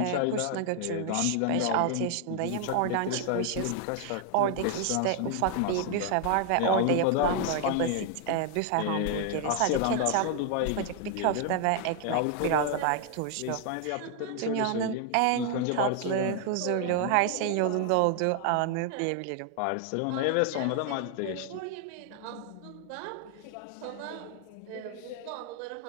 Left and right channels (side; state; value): both; different; correlation 0.00